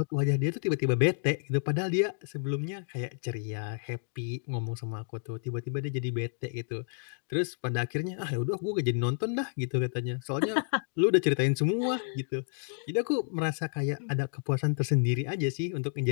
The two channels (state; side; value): silent; right; digital silence